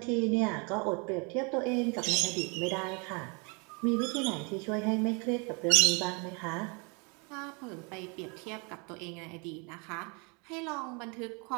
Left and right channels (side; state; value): left; quieter; 32.4 dB